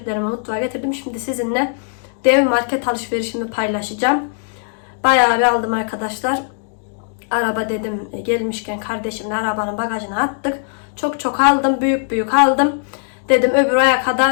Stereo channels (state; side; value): silent; right; digital silence